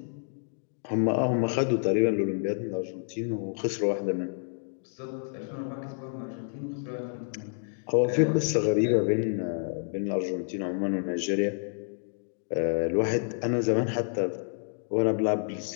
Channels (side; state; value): right; silent; digital silence